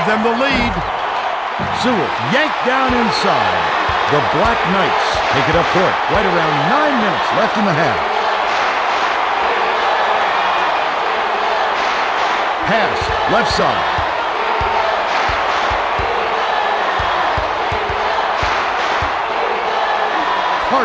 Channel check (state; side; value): identical; both; correlation 1.00